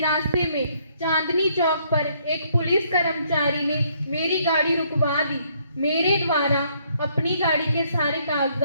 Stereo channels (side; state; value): both; inverted; correlation -0.68